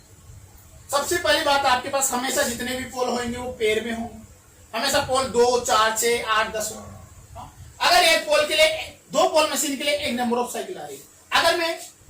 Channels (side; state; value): both; identical; correlation 1.00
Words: सबसे पहली बात आपके पास हमेशा जितने भी पोल होंगे वो पेयर में होंगे, हमेशा पोल 2 4 6 8 10 हो। अगर एक पोल के लिए, दो पोल मशीन के लिए एक नंबर ऑफ साइकिल आ रही है। अगर मैं